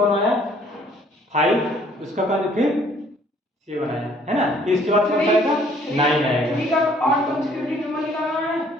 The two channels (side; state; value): both; normal; correlation 0.60